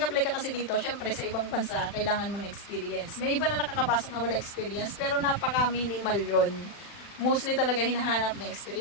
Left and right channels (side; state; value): right; late; 40 ms